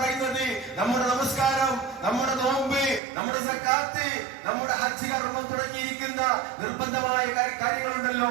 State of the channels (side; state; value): left; drops out; at 3.0 s